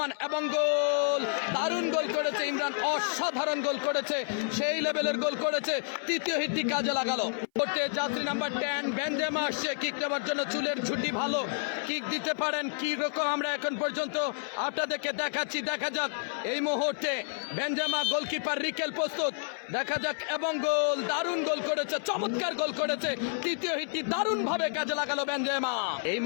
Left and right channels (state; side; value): silent; right; 57 dB below the other